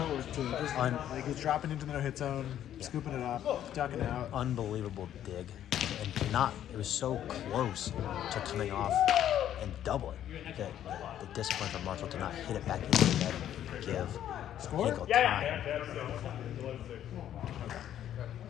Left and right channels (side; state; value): right; quieter; 11.0 dB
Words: too. Just, like he's dropping into the no-hit zone, scooping it up, ducking out. Unbelievable dig. And it was so close to coming off and doubling. The discipline from Marshall to not hit it back into the net and give Hinkle time.